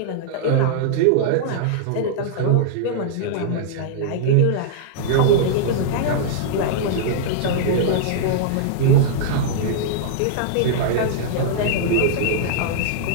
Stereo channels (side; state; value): both; different; correlation -0.02